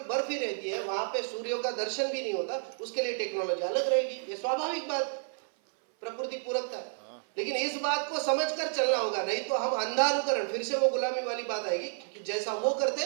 बर्फ ही रहती है, वहां पे सूर्य का दर्शन भी नहीं होता, उसके लिए टेक्नोलॉजी अलग रहेगी। ये स्वाभाविक बात, प्रकृति पूरकता है। लेकिन इस बात को समझकर चलना होगा, नहीं तो हम अंधानुकरण, फिर से वो गुलामी वाली बात आएगी कि जैसा वो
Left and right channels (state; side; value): silent; left; 57 dB below the other